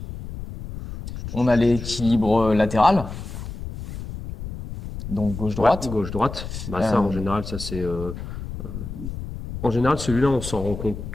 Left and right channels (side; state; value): left; noise; rumble, 9 dB below the sound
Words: on a l'équilibre latéral. Donc Ouais, gauche-droite. gauche-droite. Bah, ça, en Euh, général, ça c'est. En général, celui-là, on s'en rend compte